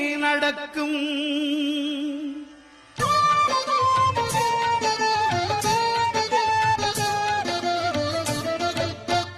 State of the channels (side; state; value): both; identical; correlation 1.00